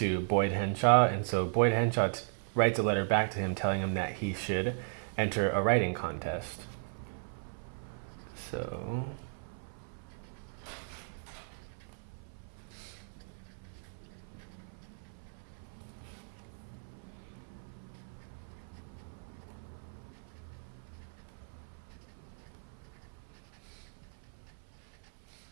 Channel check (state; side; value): silent; left; 53 dB below the other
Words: Boyd Henshaw, and so Boyd Henshaw writes a letter back to him telling him that he should enter a writing contest. So